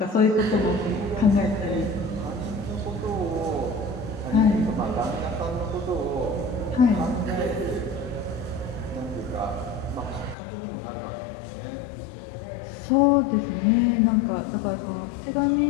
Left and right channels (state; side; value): drops out; right; at 10.4 s